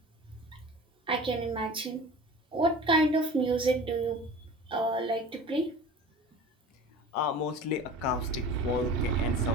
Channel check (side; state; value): both; normal; correlation 0.38